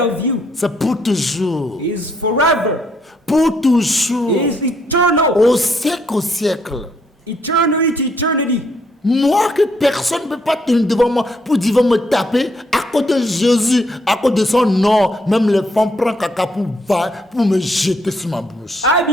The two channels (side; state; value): both; normal; correlation 0.72